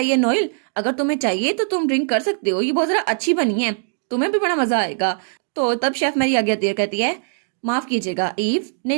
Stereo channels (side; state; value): left; silent; digital silence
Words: नोएल, अगर तुम्हें चाहिए तो तुम ड्रिंक कर सकते हो, ये बहुत जरा अच्छी बनी है, तुम्हें भी बड़ा मजा आएगा। तो तब शेफ मेरी आगे आती है, कहती है माफ कीजिएगा ईव,